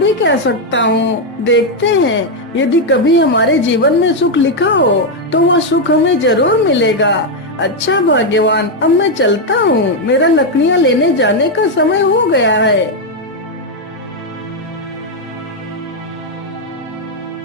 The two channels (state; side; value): normal; both; correlation 0.02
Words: क्या सकता हूँ। देखते हैं, यदि कभी हमारे जीवन में सुख लिखा हो तो वह सुख हमें जरूर मिलेगा। अच्छा भाग्यवान, अब मैं चलता हूँ, मेरा लकड़ियाँ लेने जाने का समय हो गया है।